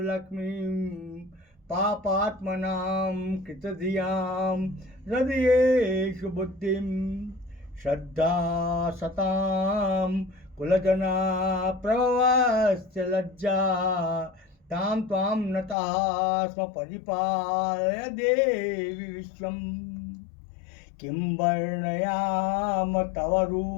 लक्ष्मीं पापात्मनां कृतधियां हृदयेषु बुद्धिं श्रद्धा सतां कुलजना प्रभवस्य लज्जा तां त्वां नतः स्म परिपालय देवी विश्वम्। किं वर्णयाम तव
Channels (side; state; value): right; drops out; at 15.8 s